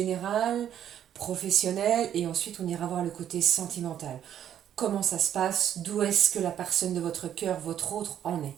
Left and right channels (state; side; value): quieter; left; 10.1 dB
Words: professionnel, et ensuite on ira voir le côté sentimental. Comment ça se passe, d'où est-ce que la personne de votre cœur, votre autre, en est.